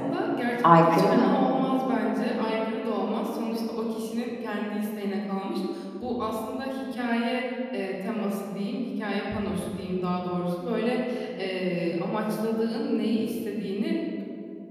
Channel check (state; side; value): identical; both; correlation 1.00